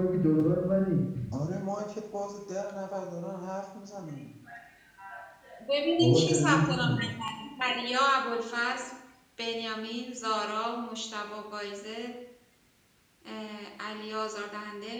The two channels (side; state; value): both; identical; correlation 1.00